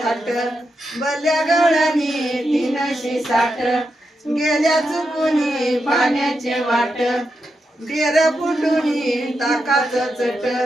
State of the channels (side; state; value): both; normal; correlation 0.86